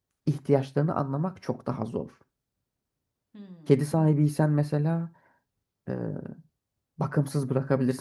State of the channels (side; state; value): both; identical; correlation 1.00